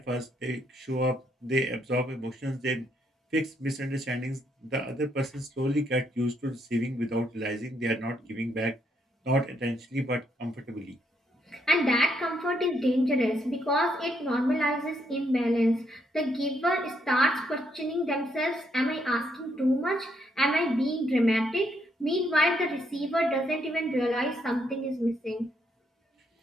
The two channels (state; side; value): normal; both; correlation 0.75